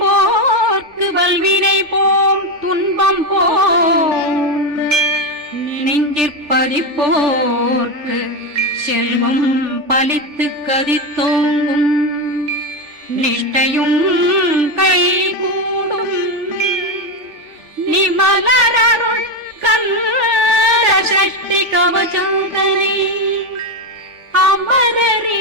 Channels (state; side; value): late; left; 3.4 ms